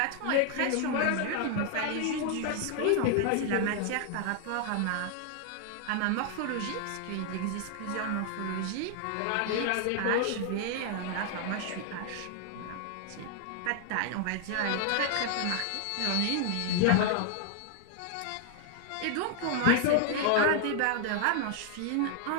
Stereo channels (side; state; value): both; different; correlation 0.00